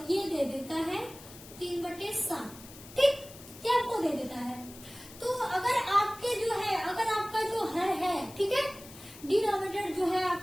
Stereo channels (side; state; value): left; noise; hiss, 18 dB below the sound